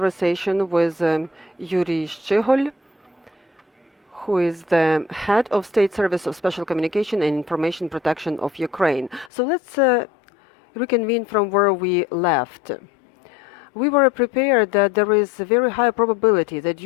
with Yurii Shchyhol, who is the head of State Service of Special Communication and Information Protection of Ukraine. So let's reconvene from where we left. We were prepared that there is a very high probability that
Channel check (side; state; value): right; drops out; at 9.3 s